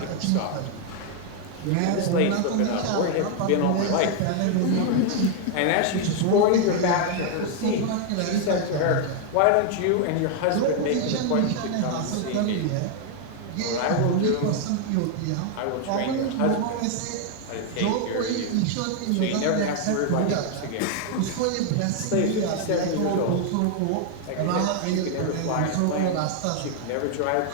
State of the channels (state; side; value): different; both; correlation 0.00